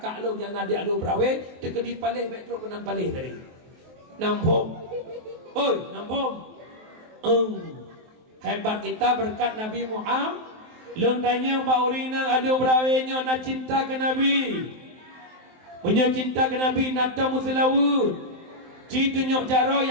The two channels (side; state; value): left; late; 23 ms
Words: lo yang nadik lo berawe tekedi palih baik truk kenam palih dari. Nampung. Oi, nampung. Hebat kita berkat Nabi Muhammad. Long tanya Mbak Urina ada berawenya nak cinta ke Nabi. Punya cinta ke Nabi nata mutlawud. Ci tunjuk cara